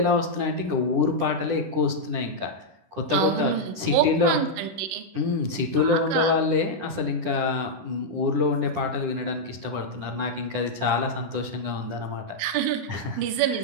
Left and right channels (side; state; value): left; late; 10 ms